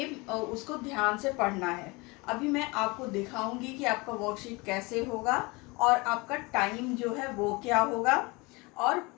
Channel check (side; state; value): right; quieter; 25.4 dB